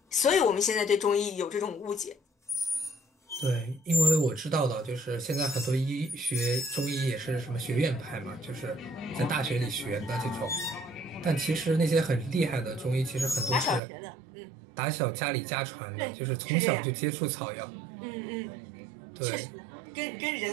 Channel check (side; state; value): left; drops out; at 13.8 s